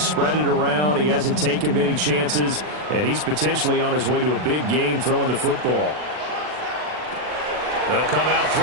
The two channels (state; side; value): late; left; 40 ms